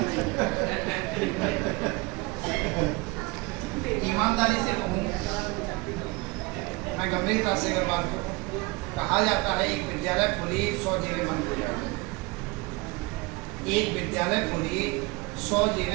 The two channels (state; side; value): quieter; left; 24.8 dB